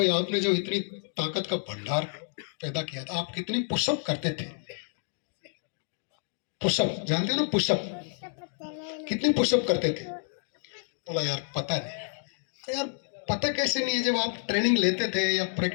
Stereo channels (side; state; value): right; silent; 58 dB below the other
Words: आपने जो इतनी ताकत का भंडार पैदा किया था, आप कितनी पुशअप करते थे? पुशअप जानते हो ना, पुशअप कितनी पुशअप करते थे? बोला यार पता नहीं। अरे यार पता कैसे नहीं है, जब आप ट्रेनिंग लेते थे या